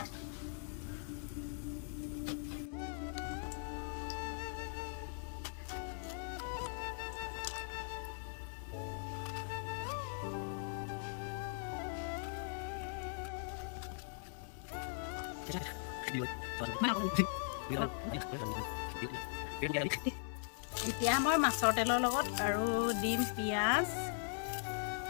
এতিয়া মই মাছৰ তেলৰ লগত আৰু দিম পিঁয়াজ।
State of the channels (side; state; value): right; silent; 51 dB below the other